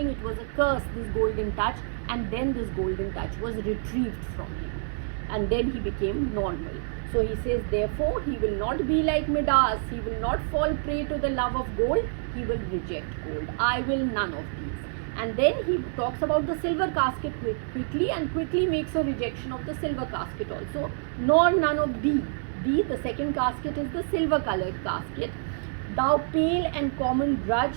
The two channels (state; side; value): silent; left; digital silence